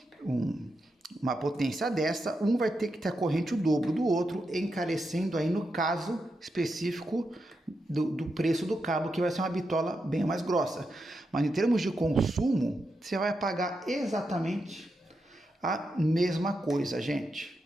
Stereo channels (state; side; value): normal; both; correlation 0.86